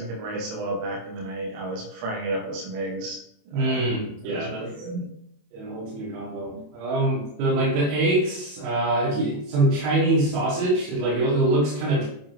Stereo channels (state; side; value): late; left; 28 ms